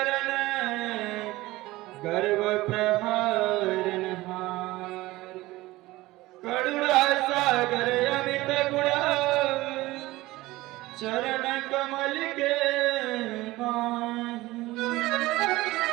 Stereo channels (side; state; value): left; quieter; 18.8 dB